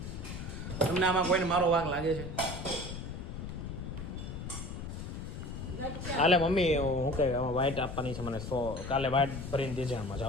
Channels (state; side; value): noise; left; rumble, 7 dB below the sound